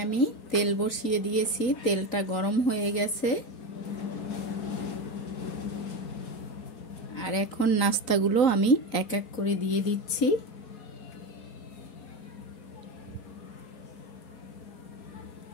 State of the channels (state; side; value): late; right; 4.0 ms